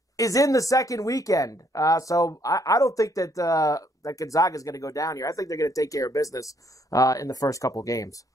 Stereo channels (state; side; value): normal; both; correlation 0.69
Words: is in the second weekend. So I don't think that that Gonzaga is going to go down here. I think they're going to take care of business in the first couple games.